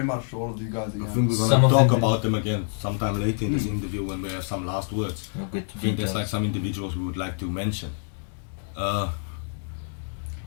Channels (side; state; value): right; silent; digital silence